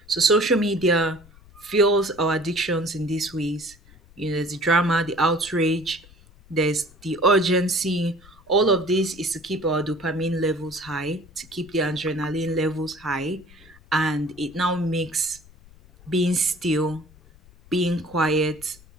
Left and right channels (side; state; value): left; noise; rumble, 25 dB below the sound